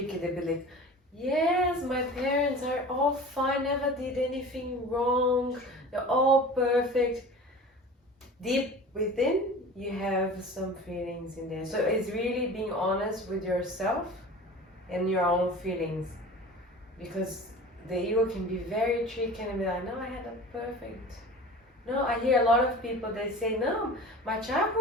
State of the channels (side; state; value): both; normal; correlation 0.38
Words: They be like, yes, my parents are all fine, never did anything wrong, they're all perfect. Deep within, you have some feelings in there. So it's really being honest with yourself and your own feelings, because the ego can be very tricky and be like, no, I had a perfect. No, I hear a lot of people, they say, no, my